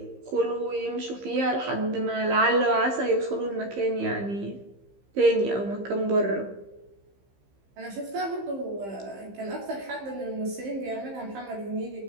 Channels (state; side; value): late; left; 15 ms